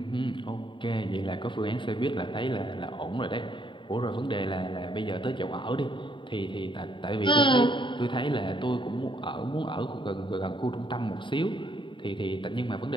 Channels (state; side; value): late; right; 0.23 ms